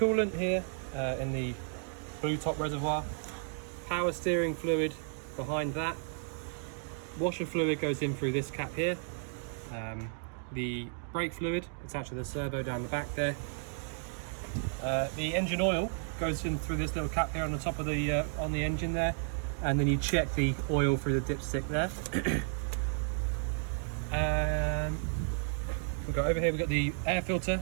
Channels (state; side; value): silent; left; 56 dB below the other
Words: here in the blue top reservoir. Power steering fluid behind that. Washer fluid goes in through this cap here. The brake fluid attached to the servo down the back there. The engine oil goes in through this little cap here on the top of the on the engine there, and then you check the oil through the dipstick there. We've got over here, we've got the air filter